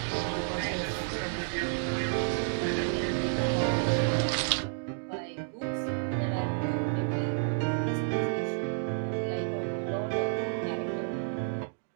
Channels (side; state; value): left; silent; digital silence